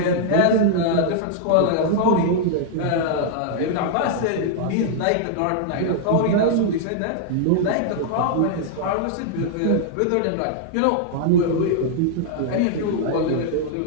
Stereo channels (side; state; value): both; different; correlation -0.01